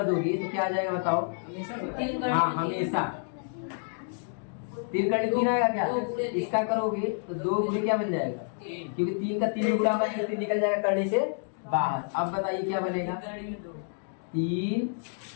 दोगे तो क्या आ जाएगा बताओ, हाँ हमेशा 3 करणी 3 आएगा क्या, इसका करोगे तो 2 गुणे क्या बन जाएगा, क्योंकि 3 का 3 गुणा होगा, 3 निकल जाएगा करणी से बाहर। अब बताइए क्या बनेगा, 3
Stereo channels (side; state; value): right; silent; 59 dB below the other